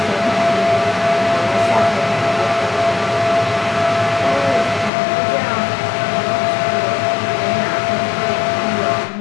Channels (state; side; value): drops out; right; at 4.9 s